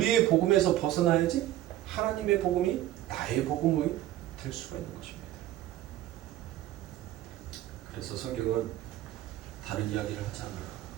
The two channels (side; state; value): left; quieter; 13.7 dB